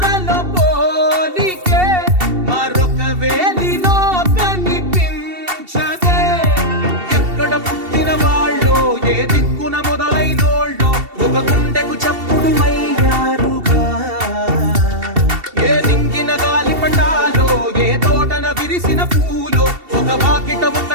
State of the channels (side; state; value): left; late; 2.7 ms